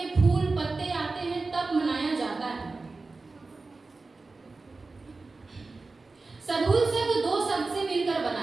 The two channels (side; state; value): left; quieter; 3.7 dB